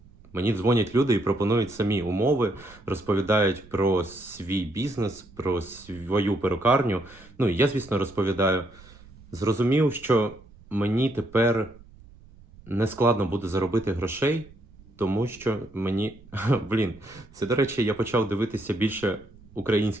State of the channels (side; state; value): right; noise; rumble, 23 dB below the sound